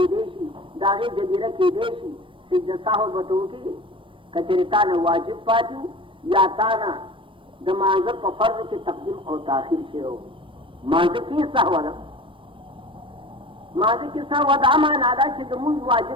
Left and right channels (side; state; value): left; late; 0.25 ms